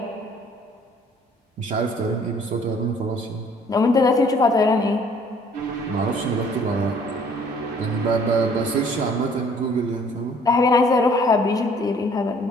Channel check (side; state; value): both; normal; correlation 0.58